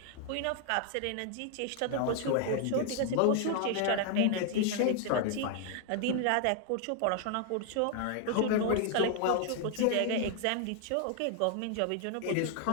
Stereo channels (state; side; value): different; both; correlation 0.00